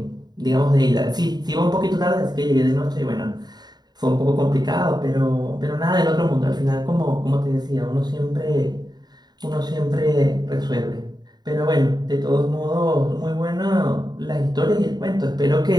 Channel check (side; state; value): left; late; 0.20 ms